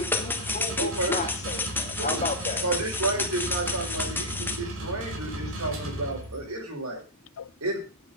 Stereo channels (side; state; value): both; normal; correlation -0.05